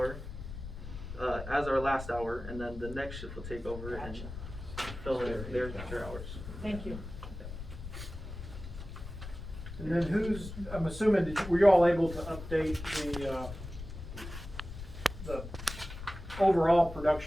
as our last hour, and then the next shift will take over and fill in their hours. Thank you. And then I'm assuming, were you all able to update the overall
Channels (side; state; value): left; noise; rumble, 10 dB below the sound